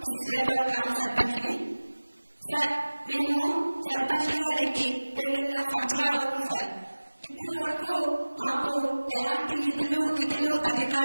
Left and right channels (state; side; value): inverted; both; correlation -1.00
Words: విశ్వేశ్వరపురం గ్రామ సర్పంచ్ని. సార్, మేము సర్పంచులుగా నెగ్గి 2.5 సంవత్సరాలు అవుతుంది సార్. ఇప్పుడు వరకు మాకు ఎలాంటి నిధులు, విధులు,